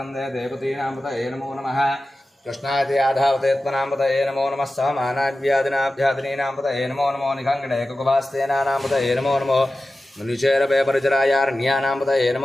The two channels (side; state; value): both; normal; correlation 0.94